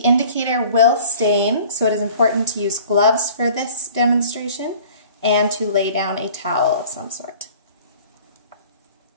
will stain, so it is important to use gloves for this demonstration and to lay down a towel of some sort.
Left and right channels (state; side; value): inverted; both; correlation -0.48